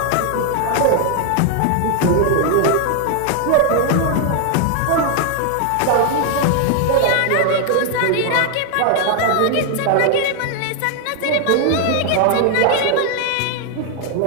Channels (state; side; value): different; both; correlation 0.00